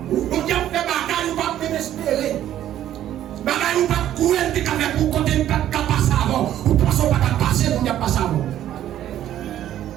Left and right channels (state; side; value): quieter; left; 11.8 dB